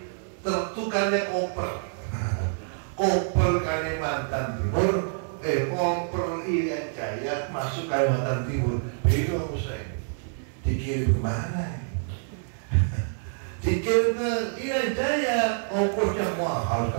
tertukarnya koper. Koper Kalimantan Timur, koper Irian Jaya masuk Kalimantan Timur. Bingung saya, dikirim kemana? Dikirim ke Irian Jaya, ongkosnya mahal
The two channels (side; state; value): left; silent; 60 dB below the other